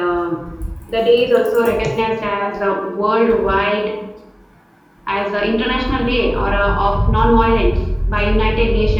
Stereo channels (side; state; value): both; identical; correlation 1.00